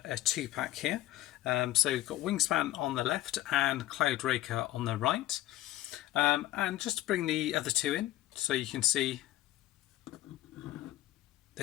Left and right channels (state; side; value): quieter; right; 15.5 dB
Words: 2-pack here. So we've got Wingspan on the left and Cloudraker on the right. And just to bring the other two in, so you can see